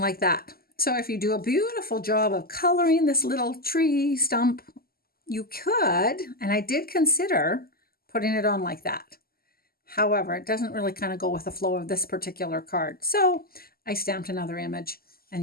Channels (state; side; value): late; right; 0.43 ms